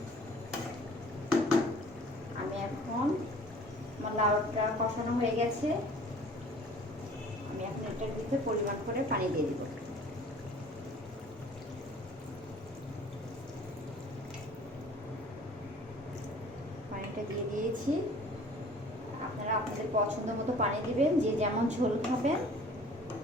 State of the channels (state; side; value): normal; both; correlation 0.50